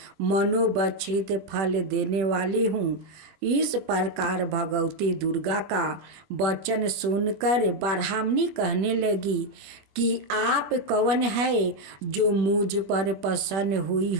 मनोवांछित फल देने वाली हूँ। इस प्रकार भगवती दुर्गा का वचन सुनकर ब्राह्मणी कहने लगी कि आप कौन है जो मुझ पर प्रसन्न हुई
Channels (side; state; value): left; late; 21 ms